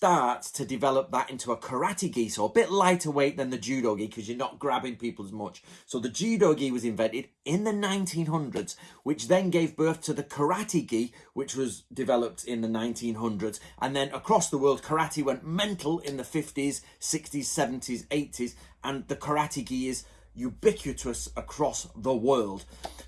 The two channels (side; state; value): both; identical; correlation 1.00